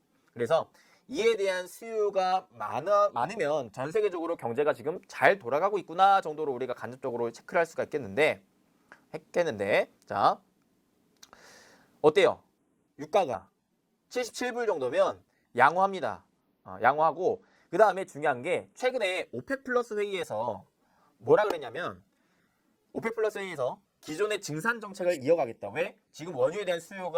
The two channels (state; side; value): identical; both; correlation 1.00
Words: 그래서 이에 대한 수요가 많으면 전 세계적으로 경제가 지금 잘 돌아가고 있구나 정도로 우리가 간접적으로 체크를 할 수가 있겠는데, 자, 어때요? 유가가 77불 정도면 양호합니다. 양호하고, 그 다음에 중요한 게 최근에 오펙 플러스 회의에서 뭐라 그랬냐면, 오펙 플러스 회의에서 기존의 증산 정책을 이어가겠다. 왜? 지금 원유에 대한